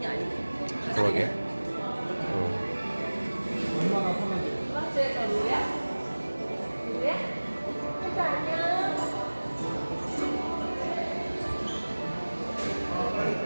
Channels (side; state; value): both; inverted; correlation -1.00